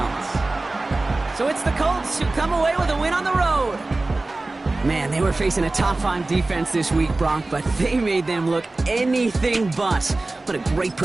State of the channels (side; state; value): left; quieter; 3.1 dB